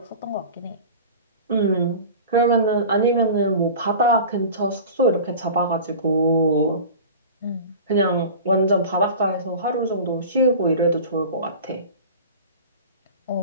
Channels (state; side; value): inverted; both; correlation -0.36